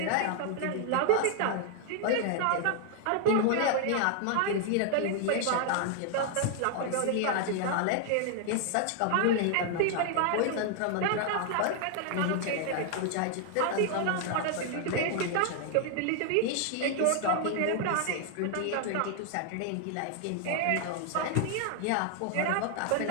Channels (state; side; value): different; both; correlation 0.00